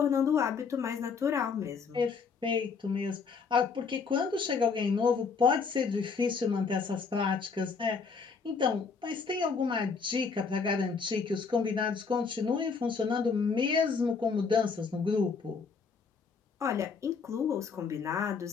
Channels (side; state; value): right; quieter; 5.3 dB